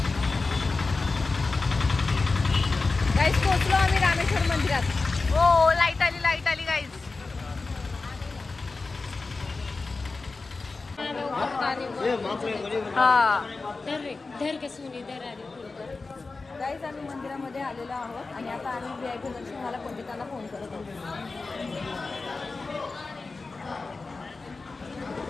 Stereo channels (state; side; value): quieter; right; 3.8 dB